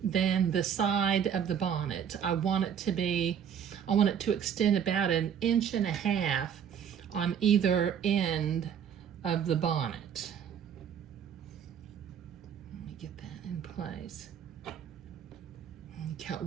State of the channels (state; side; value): quieter; left; 8.3 dB